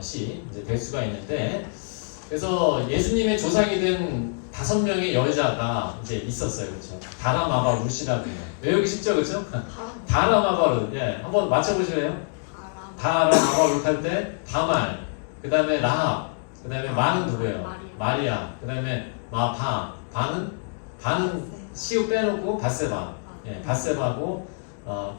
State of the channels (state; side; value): silent; right; digital silence